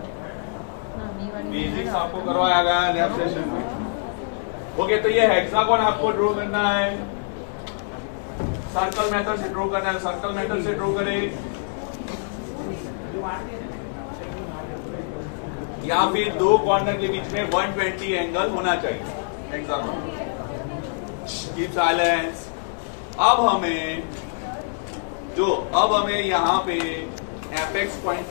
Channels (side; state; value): right; silent; 62 dB below the other